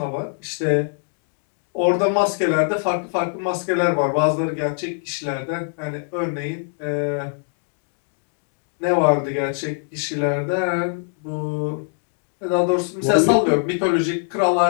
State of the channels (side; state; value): right; silent; 64 dB below the other